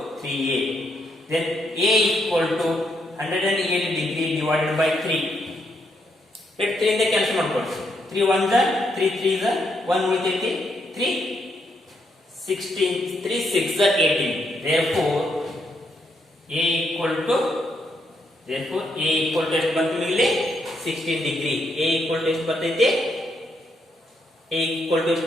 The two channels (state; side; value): normal; both; correlation 0.77